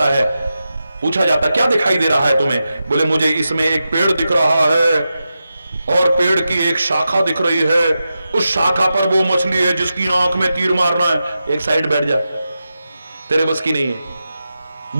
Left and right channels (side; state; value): both; inverted; correlation -0.90